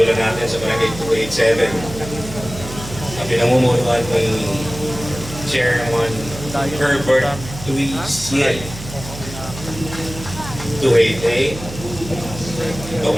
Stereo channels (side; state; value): right; noise; hum, 12 dB below the sound